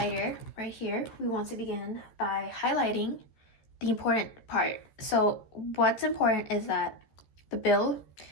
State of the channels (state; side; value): late; right; 13 ms